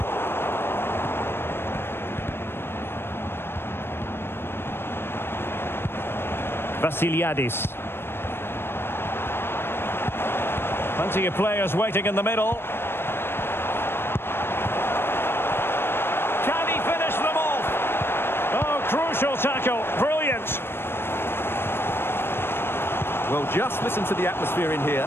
Vasiliadis. Plenty of players waiting in the middle. Can he finish them off? Oh, crucial tackle. Brilliant. Well, just listen to the atmosphere in here.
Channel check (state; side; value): late; right; 0.11 ms